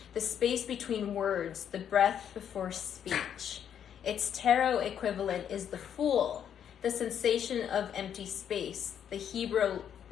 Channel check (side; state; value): right; quieter; 9.0 dB